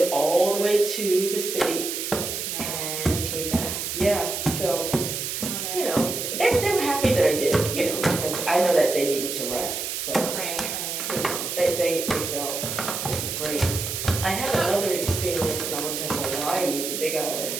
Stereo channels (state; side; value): noise; right; hiss, 4 dB below the sound